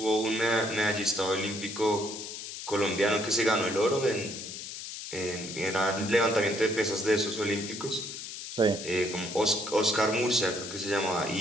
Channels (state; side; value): noise; left; hiss, 9 dB below the sound